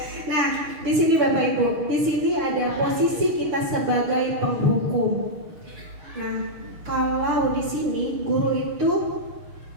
Nah, di sini Bapak Ibu, di sini ada posisi kita sebagai penghukum. Nah, kalau di sini guru itu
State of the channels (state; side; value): late; left; 6.7 ms